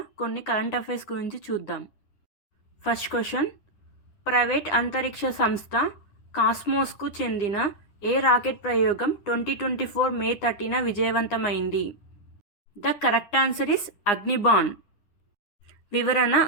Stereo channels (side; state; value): right; late; 9.8 ms